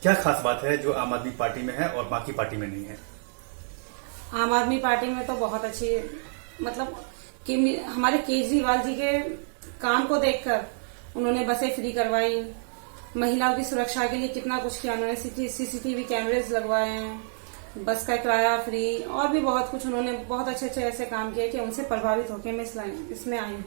क्या खास बात है जो आम आदमी पार्टी में है और बाकी पार्टी में नहीं है? आम आदमी पार्टी में तो बहुत अच्छी, मतलब कि हमारे केजरीवाल जी के काम को देखकर उन्होंने बसें फ्री करवाई, महिलाओं की सुरक्षा के लिए कितना कुछ किया उन्होंने। सीसीटीवी कैमरेज लगवाए हैं, बस का किराया फ्री, और भी बहुत कुछ उन्होंने बहुत अच्छे अच्छे ऐसे काम किए कि उनसे प्रभावित होकर मैं इसमें आई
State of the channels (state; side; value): silent; left; digital silence